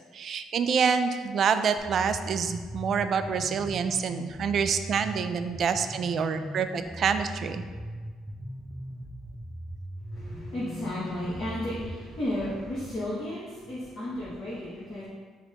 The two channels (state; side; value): quieter; left; 4.5 dB